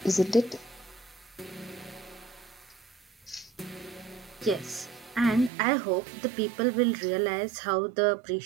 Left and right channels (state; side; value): drops out; left; at 5.5 s